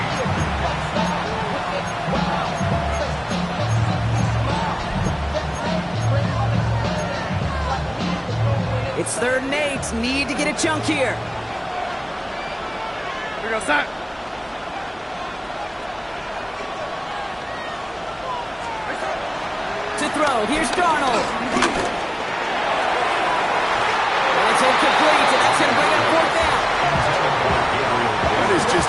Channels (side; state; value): both; identical; correlation 1.00